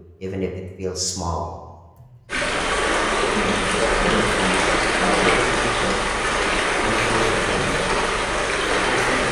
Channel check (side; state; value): both; identical; correlation 1.00